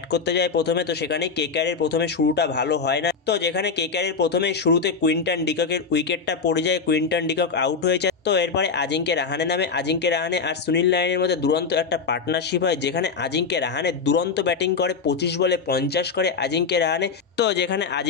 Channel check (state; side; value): quieter; right; 5.2 dB